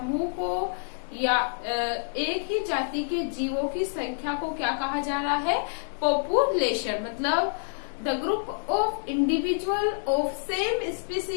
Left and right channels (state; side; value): silent; right; digital silence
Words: को या एक ही जाति के जीवों की संख्या को क्या कहा जा रहा है, पॉपुलेशन। मतलब the group of individual of same